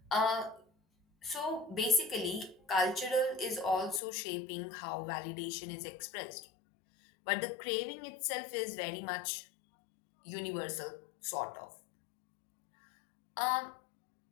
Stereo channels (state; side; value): drops out; right; at 4.0 s